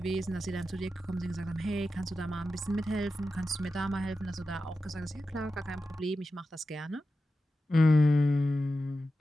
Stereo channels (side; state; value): both; normal; correlation 0.92